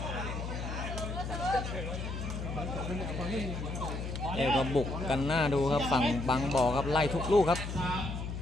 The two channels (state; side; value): noise; left; hum, 5 dB below the sound